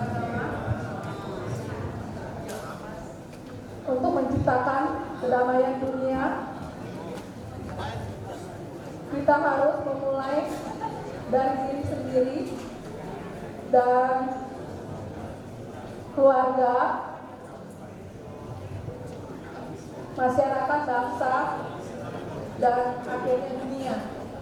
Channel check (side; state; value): both; identical; correlation 1.00